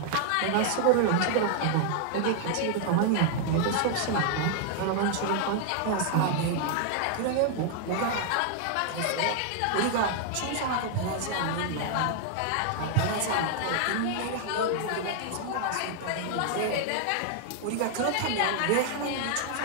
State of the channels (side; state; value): both; different; correlation 0.00